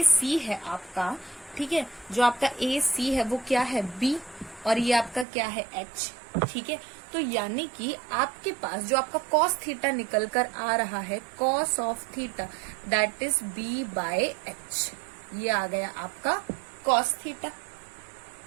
सी है आपका, ठीक है, जो आपका ए सी है वो क्या है, बी, और ये आपका क्या है, एच। ठीक है, तो यानी कि आपके पास जो आपका कॉस थीटा निकल कर आ रहा है, cos of theta that is B by H, ये आ गया आपका कॉस थीटा।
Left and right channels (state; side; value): drops out; left; at 5.2 s